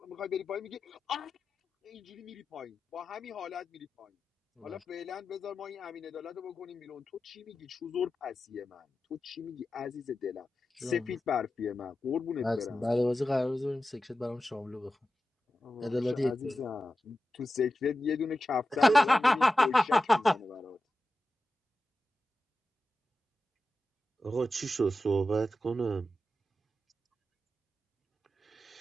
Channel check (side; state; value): both; normal; correlation 0.92